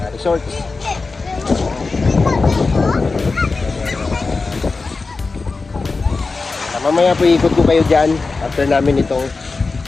resort. Mamaya po ikot ko kayo dyan after namin itong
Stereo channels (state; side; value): quieter; right; 4.0 dB